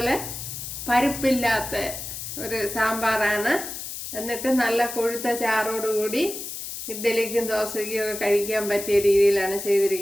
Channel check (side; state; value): left; noise; hiss, 8 dB below the sound